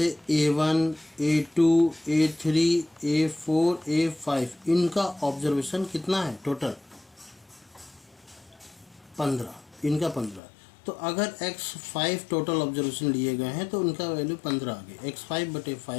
A1, A2, A3, A4, A5 इनका ऑब्जर्वेशन कितना है टोटल? 15, इनका 15। तो अगर x5 टोटल ऑब्जर्वेशन लिए गए हैं तो उनका वैल्यू 15 आ गई।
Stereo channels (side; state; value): right; drops out; at 10.4 s